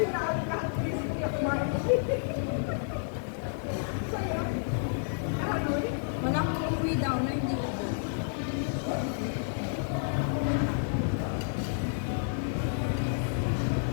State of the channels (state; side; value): silent; right; digital silence